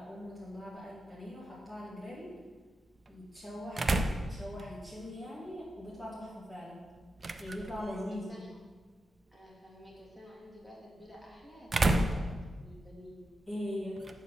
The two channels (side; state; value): both; normal; correlation 0.89